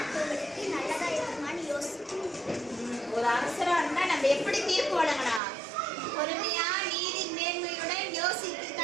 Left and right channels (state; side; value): drops out; left; at 5.4 s